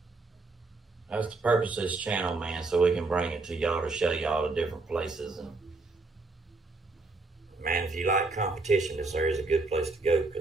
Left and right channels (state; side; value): quieter; left; 3.6 dB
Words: That's the purpose of this channel, man, so we can bring it to y'all to show y'all the different places. And man, if you like competition, this area is a good place to go